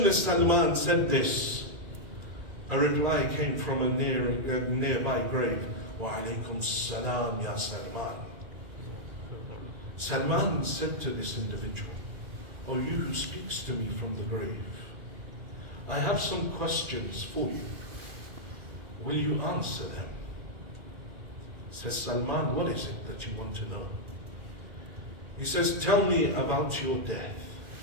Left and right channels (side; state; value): left; late; 2.0 ms